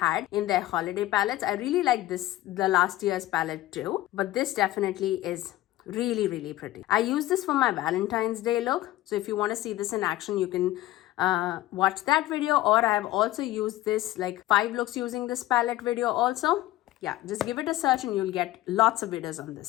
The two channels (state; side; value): quieter; right; 16.1 dB